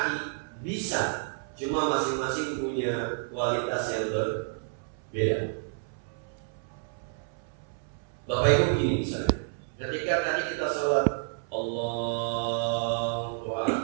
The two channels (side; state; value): left; silent; 58 dB below the other